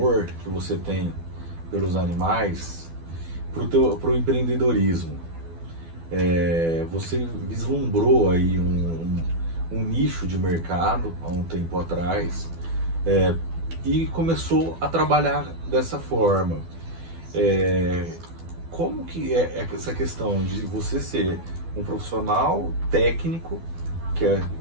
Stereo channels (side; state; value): left; late; 12 ms